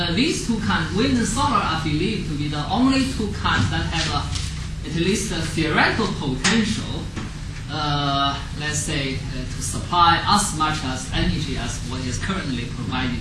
these two kinds, wind and solar, are believed to be the only two kinds that have at least a theoretical potential, let's say, to supply as much as energy as what is currently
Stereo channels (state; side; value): identical; both; correlation 1.00